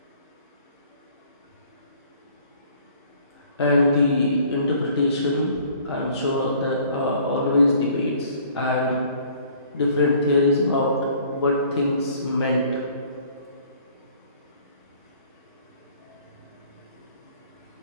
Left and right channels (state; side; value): inverted; both; correlation -0.56